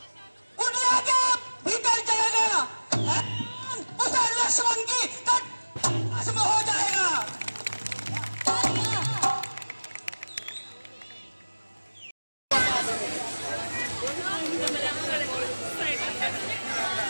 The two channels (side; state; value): both; inverted; correlation -1.00